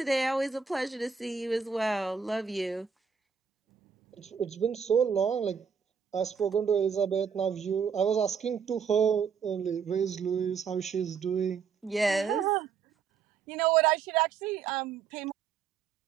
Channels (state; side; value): quieter; left; 6.5 dB